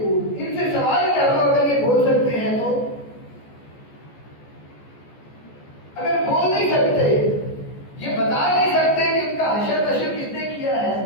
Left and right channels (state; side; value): late; right; 14 ms